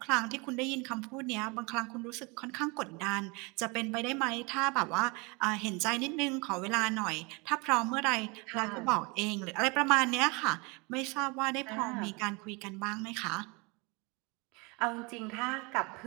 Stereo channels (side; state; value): left; quieter; 28.4 dB